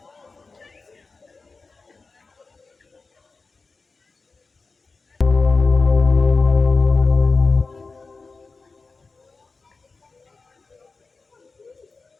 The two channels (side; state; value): right; quieter; 4.1 dB